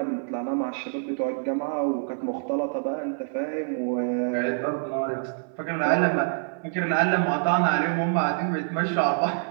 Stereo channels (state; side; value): silent; left; 57 dB below the other